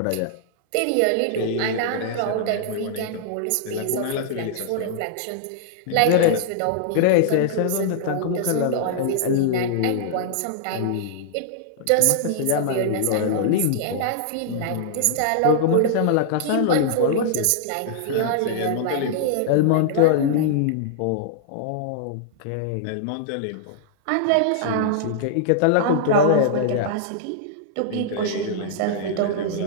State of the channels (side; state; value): both; different; correlation -0.01